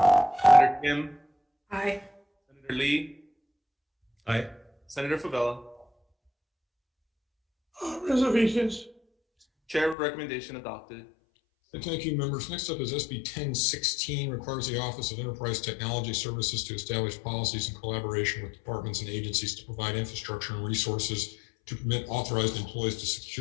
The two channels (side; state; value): right; drops out; at 10.0 s